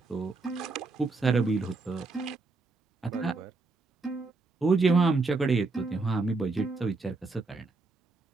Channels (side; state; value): left; quieter; 3.7 dB